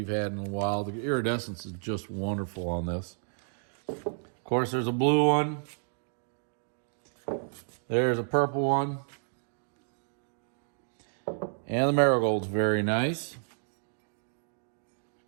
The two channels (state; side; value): silent; left; digital silence